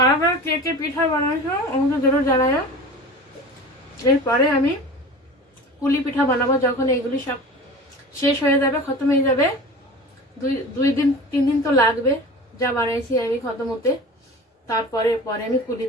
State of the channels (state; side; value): normal; both; correlation 0.36